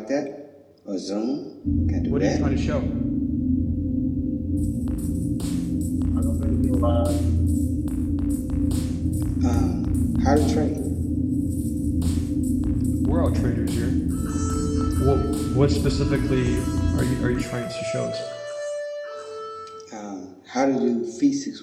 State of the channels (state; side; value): identical; both; correlation 1.00